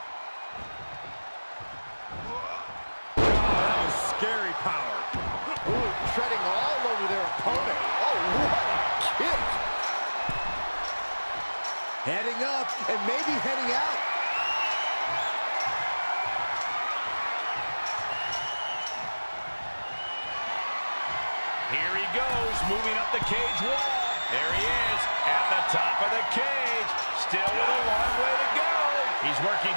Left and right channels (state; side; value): inverted; both; correlation -1.00